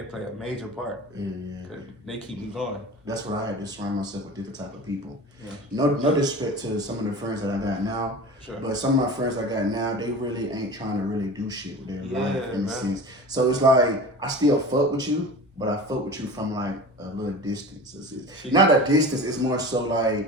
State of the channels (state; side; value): normal; both; correlation 0.35